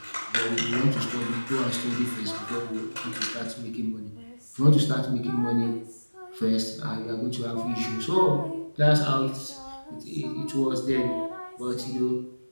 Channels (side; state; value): both; inverted; correlation -1.00